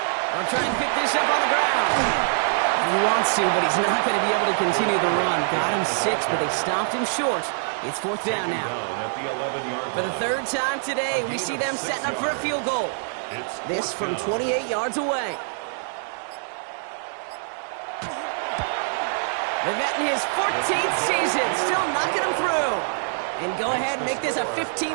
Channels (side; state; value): left; silent; digital silence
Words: They'll try and pick this up on the ground. He wants to, but he's not going to be able to continue the run. Got him 6, but they stopped him short. It's 4th down now. At the 11-yard For the 3rd time today, we see them setting up for a field goal. This from 28 yards away. Vivette in his 14th season, still knocking him through. And go ahead and make this a